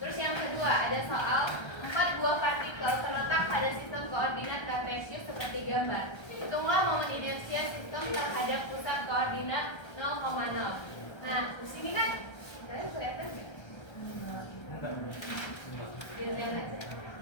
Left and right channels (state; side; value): late; right; 1.3 ms